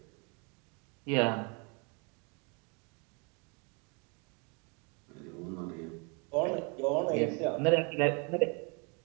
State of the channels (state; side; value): quieter; left; 33.6 dB